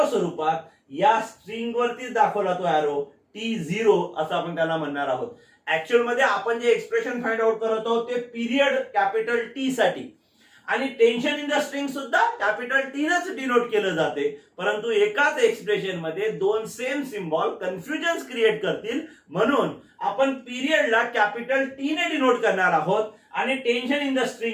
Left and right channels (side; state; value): both; identical; correlation 1.00